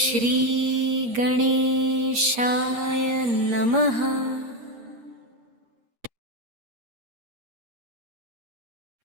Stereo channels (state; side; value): late; left; 8.5 ms